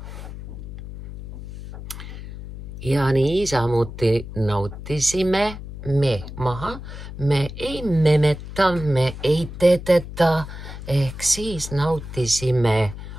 Ja niisamuti nautisime me maha. Me ei memeta, me ei teteta, ehk siis nautisime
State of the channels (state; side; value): noise; left; hum, 11 dB below the sound